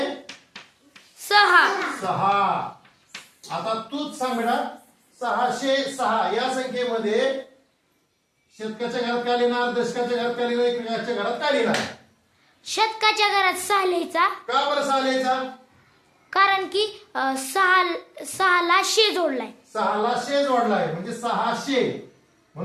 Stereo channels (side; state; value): both; identical; correlation 1.00